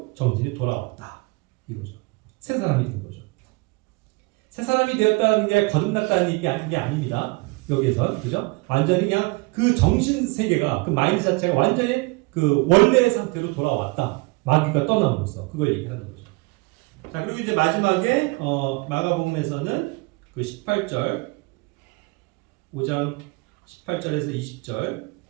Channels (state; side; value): quieter; left; 26.4 dB